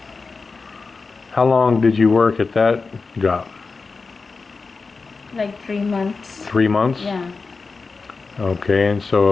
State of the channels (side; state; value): right; quieter; 4.3 dB